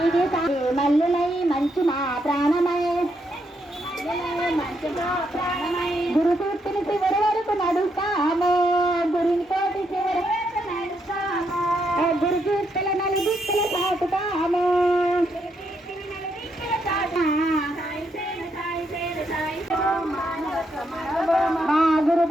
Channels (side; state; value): both; normal; correlation 0.78